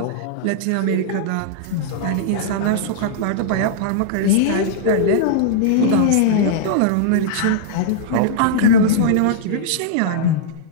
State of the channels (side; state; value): both; different; correlation -0.02